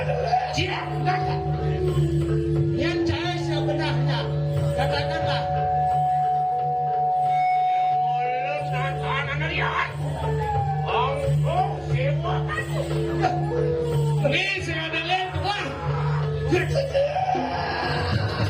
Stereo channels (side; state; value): both; identical; correlation 1.00